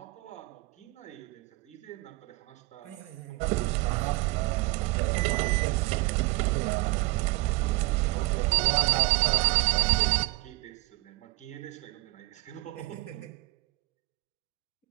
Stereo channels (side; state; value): left; quieter; 21.7 dB